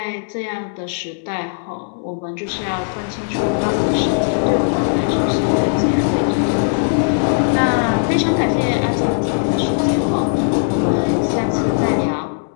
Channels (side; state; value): right; silent; 67 dB below the other